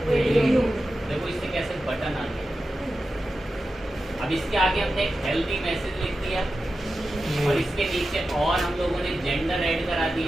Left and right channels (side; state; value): both; normal; correlation 0.92